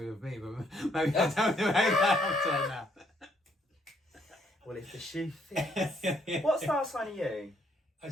with me, but maybe I don't know that now. Well, if the shoe fits. What star sign are you? I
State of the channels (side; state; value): both; normal; correlation 0.70